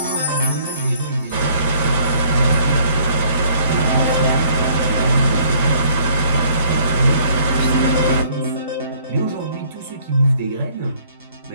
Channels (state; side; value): inverted; both; correlation -0.60